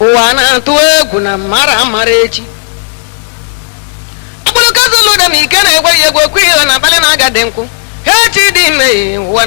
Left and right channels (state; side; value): silent; right; digital silence